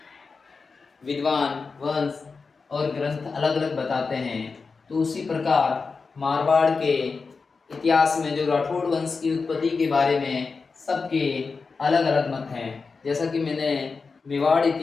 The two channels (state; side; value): quieter; right; 4.6 dB